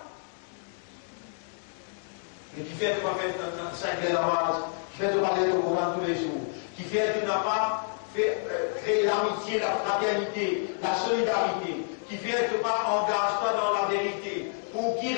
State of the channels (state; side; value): silent; right; digital silence